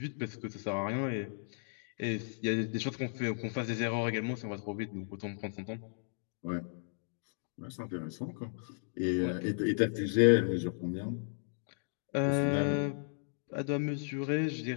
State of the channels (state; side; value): silent; right; digital silence